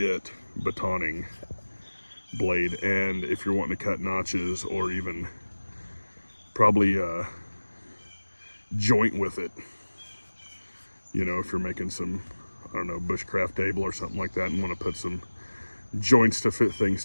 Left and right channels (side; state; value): both; inverted; correlation -1.00